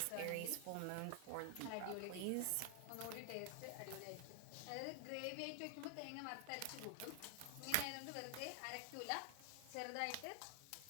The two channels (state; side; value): different; both; correlation 0.00